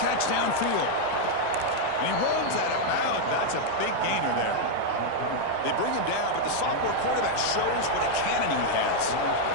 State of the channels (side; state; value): both; different; correlation 0.00